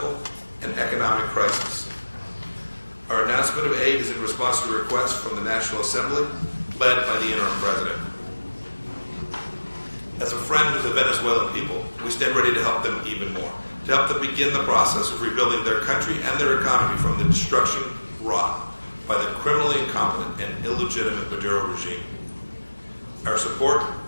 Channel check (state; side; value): inverted; both; correlation -1.00